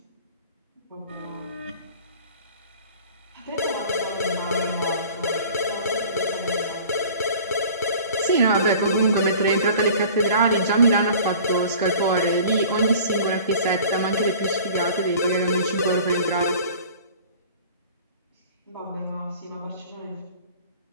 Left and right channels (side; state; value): both; inverted; correlation -0.45